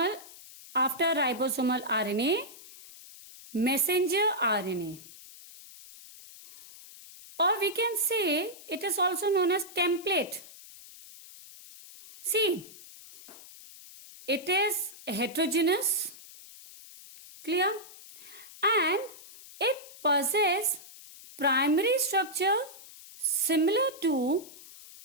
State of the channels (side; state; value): left; noise; hiss, 18 dB below the sound